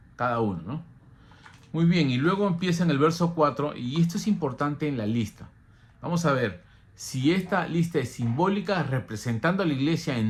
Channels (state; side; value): identical; both; correlation 1.00